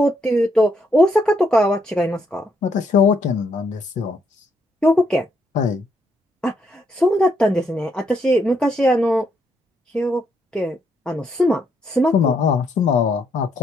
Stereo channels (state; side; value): normal; both; correlation 0.75